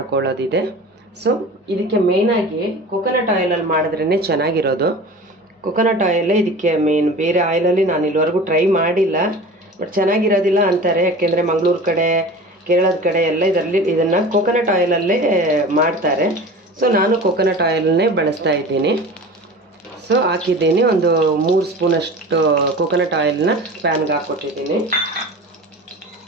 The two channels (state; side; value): normal; both; correlation 0.36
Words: ಸೊ ಇದಕ್ಕೆ ಮೇಯ್ನಾಗಿ ಕೊಕೊನಟ್ ಆಯಿಲಲ್ಲಿ ಮಾಡಿದ್ರೇ ಚೆನ್ನಾಗಿರೋದು. ಕೊಕೊನಟ್ ಆಯಿಲೇ ಇದಕ್ಕೆ ಮೇನ್. ಬೇರೆ ಆಯಿಲಲ್ಲಿ ನಾನು ಇಲ್ಲಿವರೆಗೂ ಟ್ರೈ ಮಾಡಿಲ್ಲ, ಬಟ್ ಚೆನ್ನಾಗಿರೋದಿಲ್ಲ ಅಂತಾರೆ. ಯಾಕೆಂದರೆ ಮಂಗಳೂರು ಕಡೆ, ಕೇರಳದ ಕಡೆ ಎಲ್ಲ ಇದನ್ನು ಕೊಕೊನಟ್ ಆಯಿಲಲ್ಲೇ ಮಾಡ್ತಾರೆ. ಸೊ ನಾನು ಕೊಕೊನಟ್ ಆಯಿಲನ್ನೇ ಬಳಸ್ತಾ ಇದ್ದೀನಿ. ಸೊ ಹಾಕಿದ್ದೀನಿ. ಒಂದು 3 ಸ್ಪೂನಷ್ಟು ಕೋಕೋನಟ್ ಆಯಿಲ್ನ ಪ್ಯಾನ್ಗೆ ಹಾಕ್ಕೊಟ್ಟಿದ್ದೀನಿ.